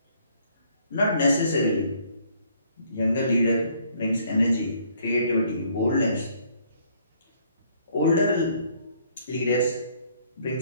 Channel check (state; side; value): inverted; both; correlation -0.64